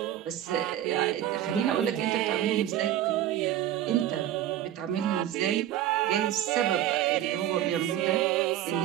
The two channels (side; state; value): left; quieter; 12.0 dB